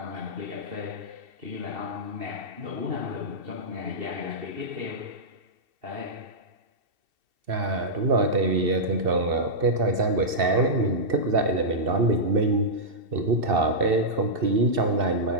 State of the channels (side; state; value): left; late; 2.7 ms